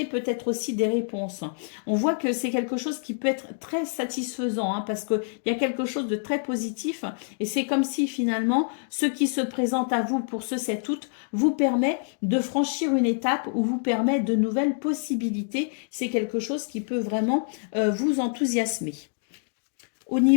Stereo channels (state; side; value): silent; right; digital silence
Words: peut-être aussi des réponses. On voit que c'est quelque chose qui peut être très satisfaisant, hein, parce qu'il y a quelque chose de très positif et c'est comme si finalement ce qui se présente à vous pour ce 7 août vous permet de franchir une étape ou vous permet de nouvelles possibilités. C'est quelque chose qui peut vraiment vous enthousiasmer. Au